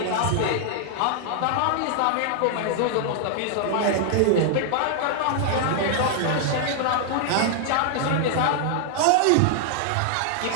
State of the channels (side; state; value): both; different; correlation 0.00